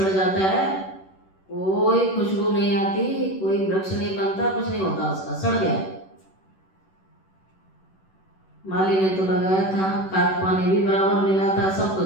जाता है, कोई खुशबू नहीं आती, कोई वृक्ष नहीं बनता, कुछ नहीं होता, उसका सड़ गया। माली ने तो लगाया था, खाद पानी भी बराबर मिला था, सब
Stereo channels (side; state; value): right; late; 11 ms